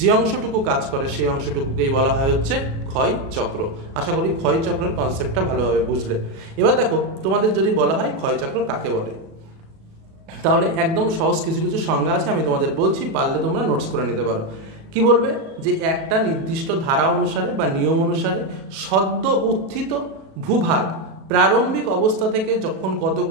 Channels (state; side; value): late; left; 37 ms